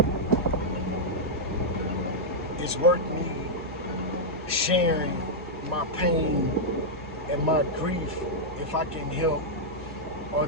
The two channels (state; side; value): normal; both; correlation -0.05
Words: is worth me sharing my pain and my grief if I can help, or